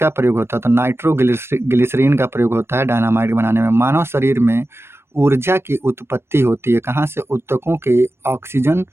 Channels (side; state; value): left; late; 0.12 ms